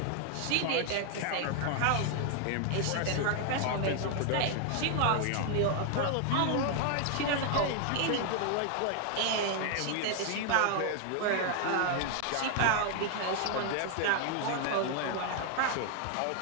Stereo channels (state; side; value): different; both; correlation 0.00